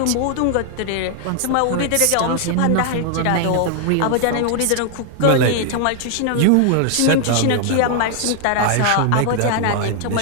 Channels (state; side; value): different; both; correlation 0.00